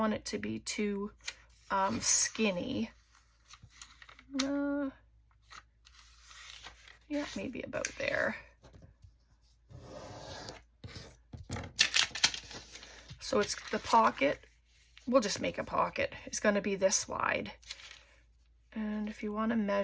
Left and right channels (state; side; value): identical; both; correlation 1.00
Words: it to be too skinny. Yeah, maybe about there. So it's the pocket. We'll just make a pocket. It's going to be this wide. And if you want a